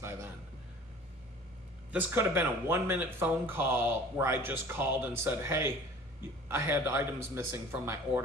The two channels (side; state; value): both; normal; correlation 0.46